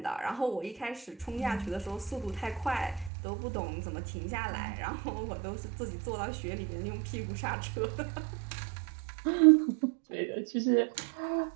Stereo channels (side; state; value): left; drops out; at 3.1 s